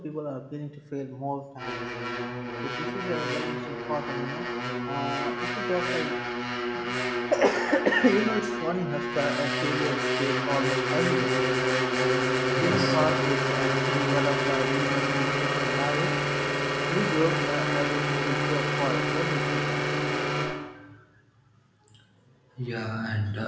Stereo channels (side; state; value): both; identical; correlation 1.00